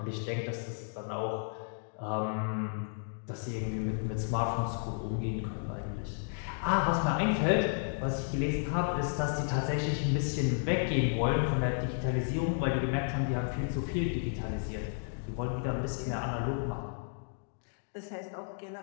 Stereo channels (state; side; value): silent; right; digital silence